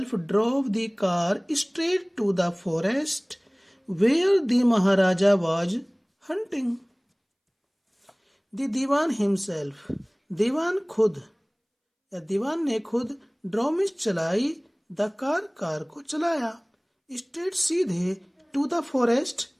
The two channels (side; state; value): both; identical; correlation 1.00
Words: drove the car straight to the forest where the Maharaja was hunting. The Diwan himself, दीवान खुद या दीवान ने खुद ड्रॉ में चलाई, द कार को चलाया, स्ट्रेट सीधे, टू द फॉरेस्ट